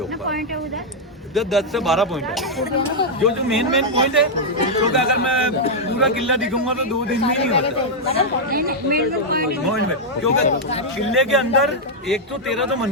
ऊपर। 10 से 12 पॉइंट है, जो मेन पॉइंट है। क्योंकि अगर मैं पूरा किला दिखाऊंगा तो 2 दिन में नहीं होता पॉइंट में। क्योंकि किले के अंदर 113 तो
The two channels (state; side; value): normal; both; correlation -0.03